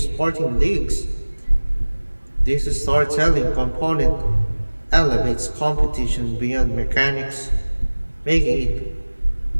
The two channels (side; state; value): both; inverted; correlation -1.00